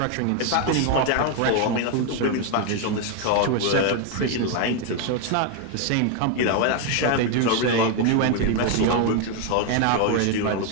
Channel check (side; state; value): both; different; correlation 0.01